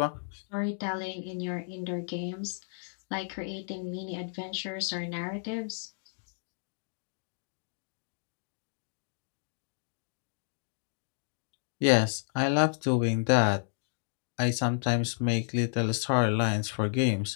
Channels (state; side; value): silent; right; digital silence